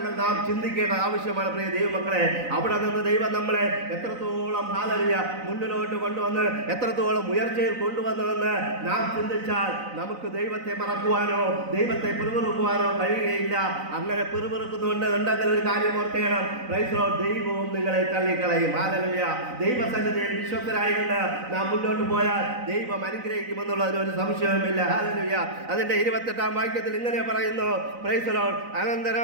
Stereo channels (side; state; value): left; late; 4.0 ms